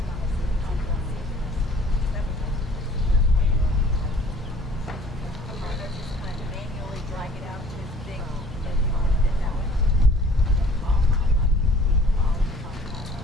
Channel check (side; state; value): both; normal; correlation 0.52